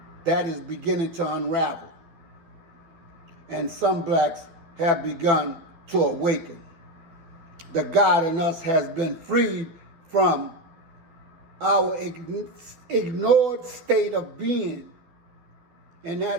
that is beginning to unravel, and some blacks have begun to awaken. The God in us has been freed from our ignored state of being, and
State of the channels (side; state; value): left; late; 12 ms